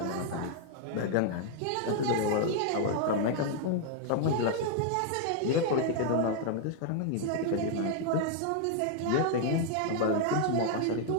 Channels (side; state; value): both; different; correlation 0.00